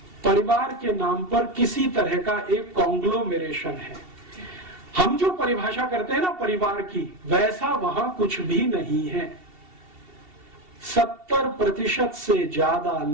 परिवार के नाम पर किसी तरह का एक कॉन्ग्लोमेरेशन है। हम जो परिभाषा करते हैं ना परिवार की, वैसा वहां कुछ भी नहीं है। 70% से ज्यादा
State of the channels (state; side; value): late; left; 2.7 ms